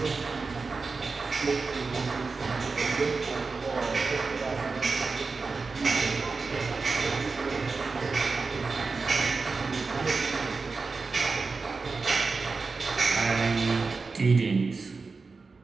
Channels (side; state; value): left; quieter; 4.3 dB